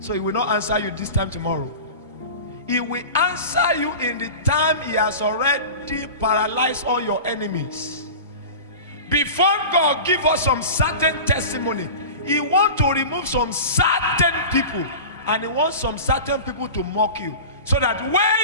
he will not answer you this time tomorrow. He will answer you in the time he has already paralyzed all your enemies. Before God give us some certain testimony, he want to remove some certain people, and he wants some certain people to mock you, so that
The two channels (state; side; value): inverted; both; correlation -0.33